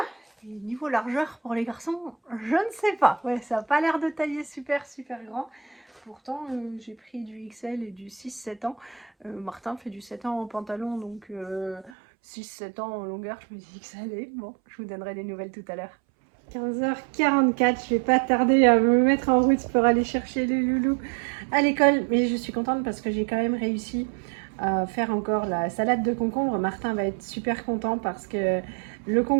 Et niveau largeur pour les garçons, je ne sais pas. Ouais, ça n'a pas l'air de tailler super super grand. Pourtant, j'ai pris du XL et du 6-7 ans. Martin fait du 7 ans en pantalon, donc 6-7 ans en longueur, je me dis que ça allait. Bon, je vous donnerai des nouvelles tout à l'heure. 15h44, je vais pas tarder à me mettre en route pour aller chercher les loulous à l'école. Mais je suis contente parce que j'ai quand même réussi à faire encore la salade de concombre. Martin va être super content parce que le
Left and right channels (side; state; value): left; drops out; at 11.9 s